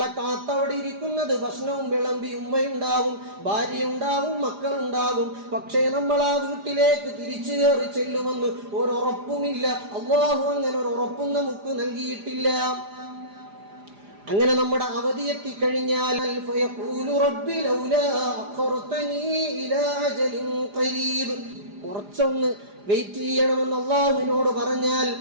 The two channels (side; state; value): left; late; 4.9 ms